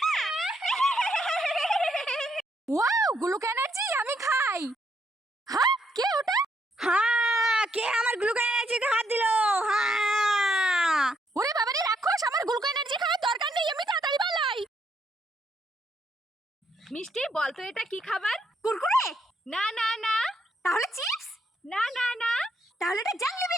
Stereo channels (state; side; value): normal; both; correlation 0.74